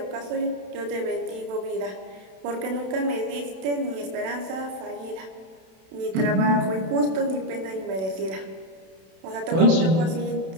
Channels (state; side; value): late; left; 31 ms